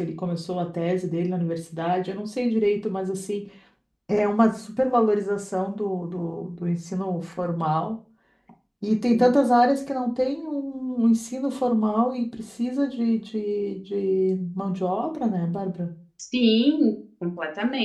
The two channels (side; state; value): both; identical; correlation 1.00